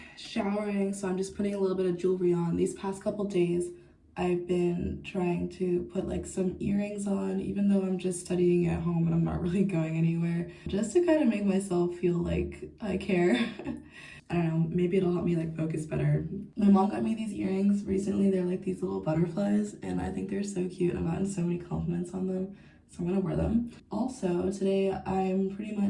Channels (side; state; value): both; identical; correlation 1.00